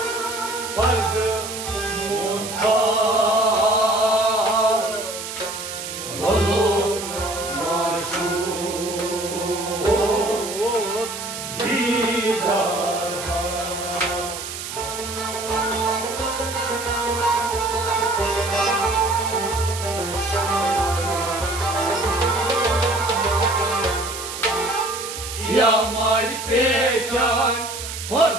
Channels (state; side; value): noise; right; hiss, 8 dB below the sound